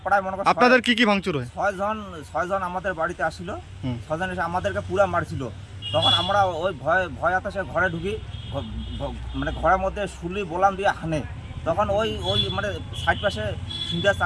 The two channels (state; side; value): identical; both; correlation 1.00